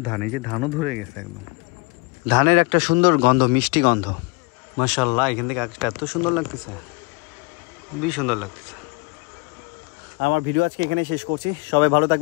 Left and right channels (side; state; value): right; quieter; 27.9 dB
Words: ধান, এই যে ধানও ধরে গেছে একদম। ধানের একটা সুন্দর গন্ধ, মিষ্টি গন্ধ। মাশাআল্লাহ এখান থেকে আকাশটা এত সুন্দর লাগতেছে, খুবই সুন্দর লাগতেছে। আমার ভিডিও আজকে এখানে শেষ করছি। সবাই ভালো